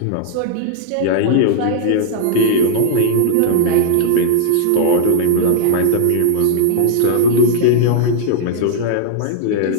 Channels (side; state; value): both; different; correlation -0.01